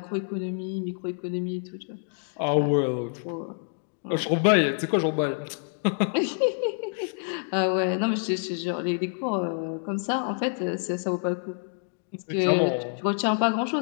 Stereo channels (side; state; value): right; silent; 60 dB below the other